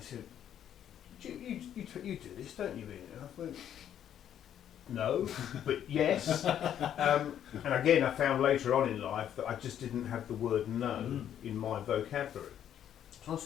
you do this, don't you, Ian? And I went, no, but yes. And again, I found later on in life that I just didn't have the word no in my vocabulary. So I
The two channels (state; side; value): quieter; right; 10.0 dB